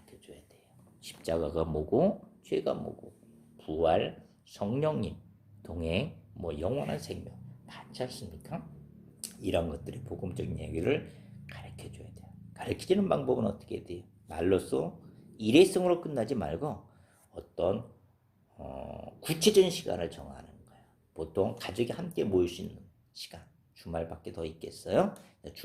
돼요. 십자가가 뭐고 죄가 뭐고 부활, 성령님, 동행, 영원한 생명 많지 않습니까? 이런 것들이 복음적인 얘기를 가르쳐줘야 돼요. 가르치는 방법은 어떻게 돼요? 말로써 일회성으로 끝나지 말고 어떤 구체적인 시간을 정하는 거예요. 보통 가족이 함께 모일 수 있는 시간, 주말밖에 더 있겠어요?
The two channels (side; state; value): both; identical; correlation 1.00